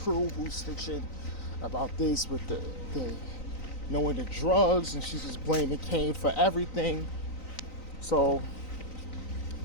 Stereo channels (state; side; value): late; right; 3.9 ms